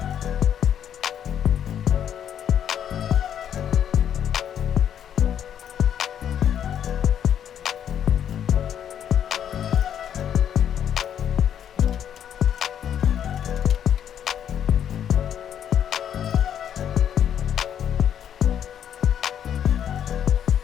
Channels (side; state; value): right; quieter; 9.4 dB